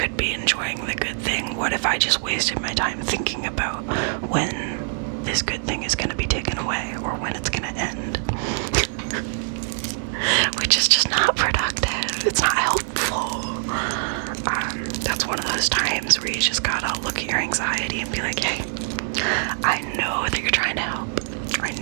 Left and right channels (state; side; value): silent; left; 63 dB below the other